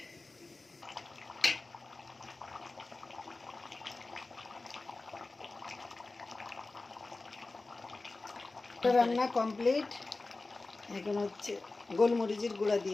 রান্না কমপ্লিট। এখন হচ্ছে গোলমরিচের গুঁড়া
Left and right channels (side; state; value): right; quieter; 3.4 dB